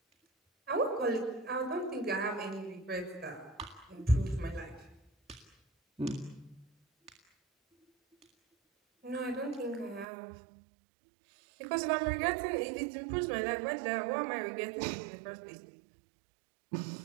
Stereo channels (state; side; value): drops out; left; at 10.1 s